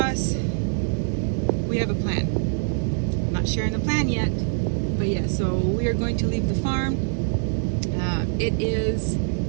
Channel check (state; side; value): silent; left; 63 dB below the other